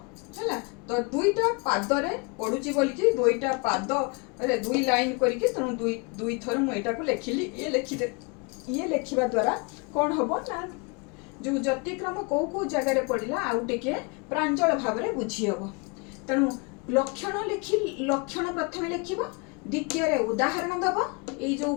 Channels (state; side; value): quieter; right; 31.3 dB